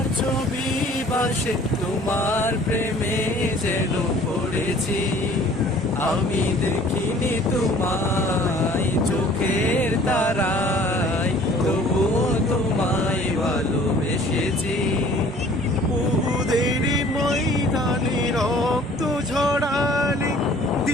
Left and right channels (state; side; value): normal; both; correlation 0.52